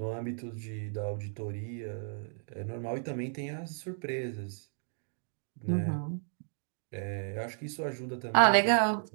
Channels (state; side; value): silent; left; digital silence